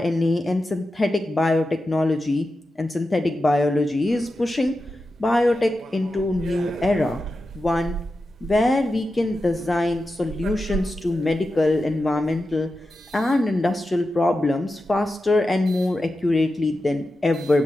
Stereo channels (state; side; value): normal; both; correlation 0.91